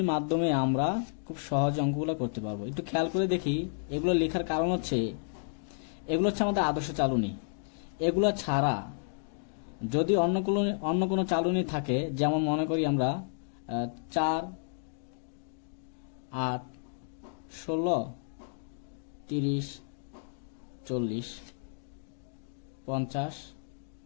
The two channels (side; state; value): right; silent; digital silence